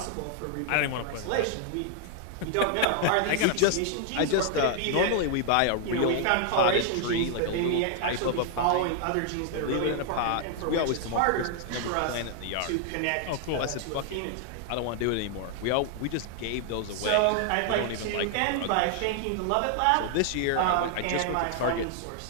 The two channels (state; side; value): different; both; correlation 0.00